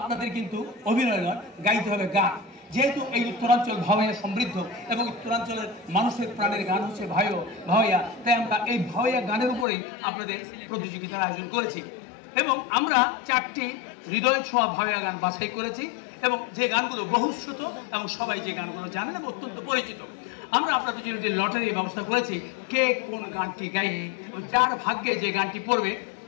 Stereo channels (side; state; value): right; drops out; at 9.7 s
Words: কিন্তু অভিনয় নয়, গাইতে হবে গান। যেহেতু এই উত্তরাঞ্চল ভাওয়াইয়া সমৃদ্ধ এবং উত্তরাঞ্চলের মানুষের প্রাণের গান হচ্ছে ভাওয়াইয়া, তাই আমরা এই ভাওয়াইয়া গানের উপরেই আপনাদের প্রতিযোগিতার আয়োজন করেছি এবং আমরা 4টি হৃদয় ছোঁয়া ভাওয়াইয়া গান বাছাই করেছি এবং যে গানগুলো বহুশ্রুত এবং সবাই যে গানগুলো জানেন এবং অত্যন্ত পরিচিত। আমরা আপনাদের জন্য একটি লটারির ব্যবস্থা করেছি, কে কোন গানটি গাইবে এবং যার ভাগ্যে যে গানটি পড়বে